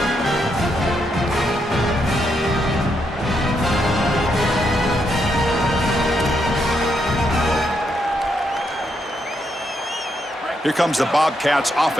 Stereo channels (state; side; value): normal; both; correlation 0.79